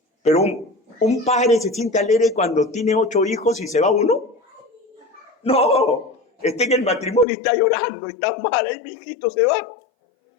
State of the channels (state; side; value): drops out; right; at 7.2 s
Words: Pero un padre se siente alegre cuando tiene 8 hijos y se va uno. No, está en el matrimonio y está llorando, está mal, ahí mi hijito se va.